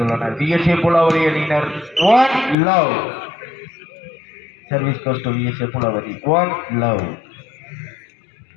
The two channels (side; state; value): right; drops out; at 2.6 s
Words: விஎஸ்ஏ புலாவரி அணியினர். 1 love. Service goes to VSA Pulavari. 1 love.